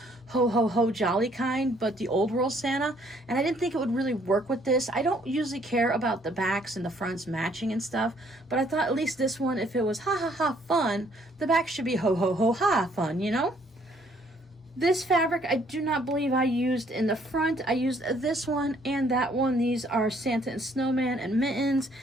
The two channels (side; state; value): both; normal; correlation 0.64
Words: ho ho ho jolly kind, but the old world Santa. And I didn't think it would really work with this. I don't usually care about the backs and the fronts matching and stuff, but I thought at least this one, if it was ha ha ha fun, the back should be ho ho ho ha fun, you know? This fabric I do not believe I used in the front. I used this one and that one. These are Santa and Snowman and Mittens.